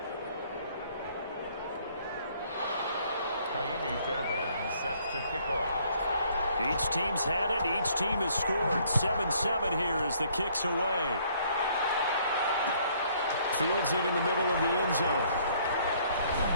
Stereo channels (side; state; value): both; inverted; correlation -0.63